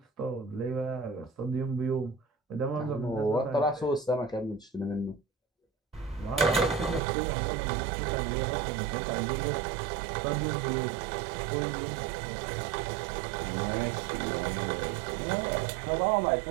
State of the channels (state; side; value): drops out; left; at 7.0 s